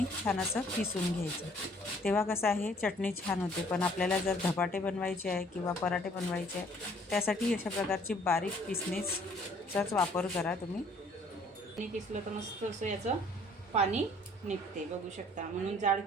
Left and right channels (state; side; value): normal; both; correlation 0.59